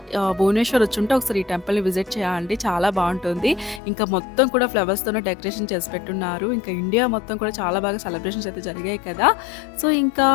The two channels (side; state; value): right; drops out; at 3.8 s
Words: భువనేశ్వర్ వచ్చుంటే ఒకసారి ఈ టెంపుల్‌ని విజిట్ చేయండి. చాలా బాగుంటుంది. ఇంకా మొత్తం కూడా ఫ్లవర్స్‌తోనే డెకరేషన్ చేసి పెట్టున్నారు. ఇంకా ఇండియా మొత్తం కూడా చాలా బాగా సెలబ్రేషన్స్ అయితే జరిగాయి కదా! సో, ఇంకా